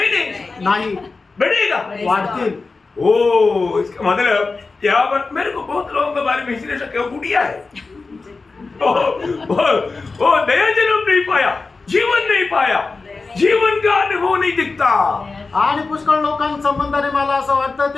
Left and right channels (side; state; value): right; quieter; 4.0 dB